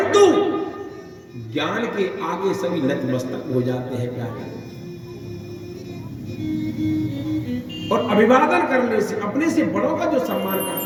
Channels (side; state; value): both; identical; correlation 1.00